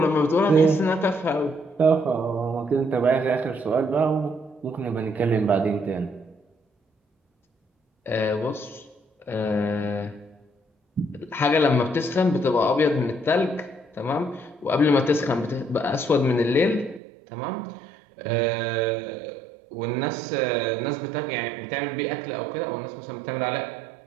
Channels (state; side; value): drops out; left; at 17.0 s